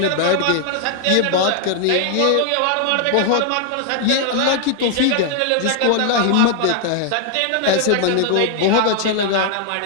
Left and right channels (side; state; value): both; different; correlation 0.00